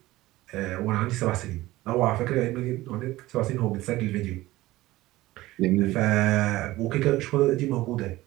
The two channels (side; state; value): left; quieter; 17.7 dB